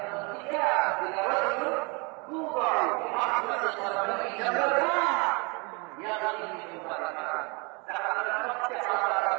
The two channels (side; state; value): left; quieter; 30.1 dB